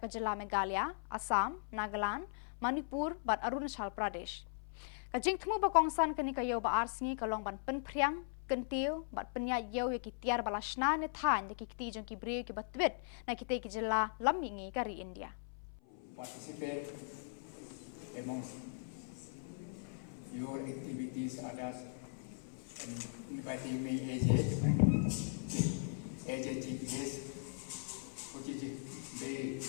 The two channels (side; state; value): right; silent; 52 dB below the other